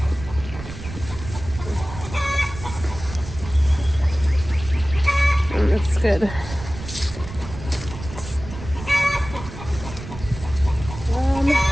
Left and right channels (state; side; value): noise; right; rumble, 12 dB below the sound